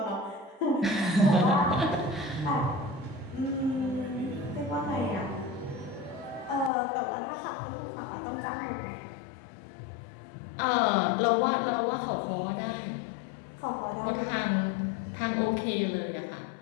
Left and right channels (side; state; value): right; drops out; at 6.7 s